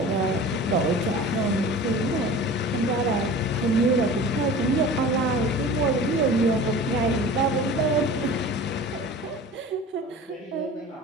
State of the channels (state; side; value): normal; both; correlation 0.39